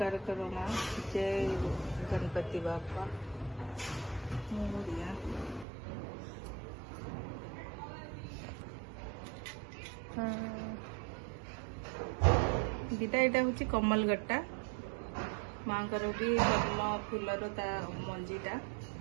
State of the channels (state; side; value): drops out; left; at 5.7 s